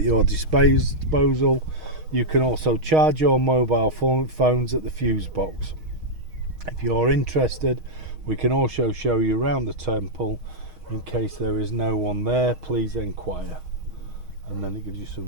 your disposal. You can also charge your mobile phones at the fuse box. If you're interested, we can also show you around the temple. In case there is no one there, please inquire. And then it gives you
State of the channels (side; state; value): left; late; 6.4 ms